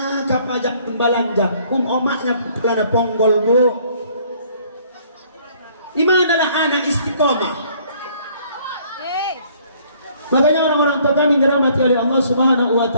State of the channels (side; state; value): both; inverted; correlation -0.60